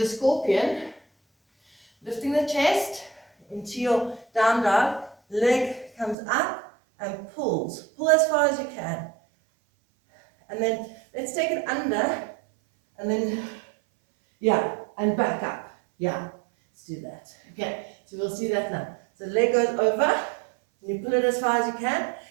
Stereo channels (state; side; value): drops out; left; at 6.2 s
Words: scorpion. Lifting the chest into your down dog, leg comes up and pulls. Pull as far as you can. And then let's take it under and then, yeah, and back up. Yeah, let's do that. Okay, so we'll see that now. So leg goes over, and you pull it as far as you can.